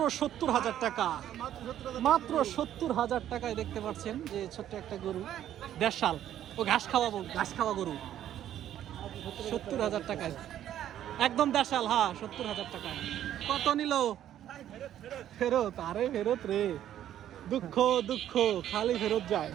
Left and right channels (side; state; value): left; quieter; 11.4 dB